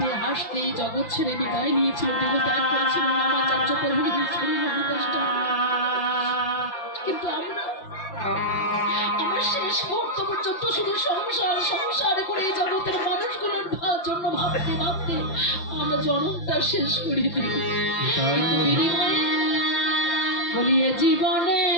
হাসতে জগৎ ছেড়ে বিদায় নিয়েছিল, দেহ ত্যাগ করেছিল নামাচার্য প্রভু শ্রী হরিদাস ঠাকুর। কিন্তু আমরা শেষ মুহূর্ত পর্যন্ত শুধু সংসার সংসার করে জগতের মানুষগুলোর জন্য ভাবতে ভাবতে আমরা জনমটা শেষ করে দিই। কিন্তু বিনিময়ে বলিয়ে জীবনে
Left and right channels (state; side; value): late; right; 5.9 ms